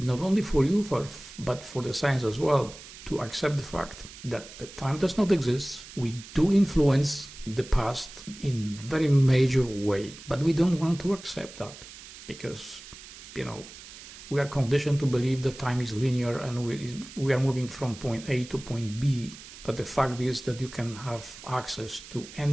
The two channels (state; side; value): noise; right; hiss, 16 dB below the sound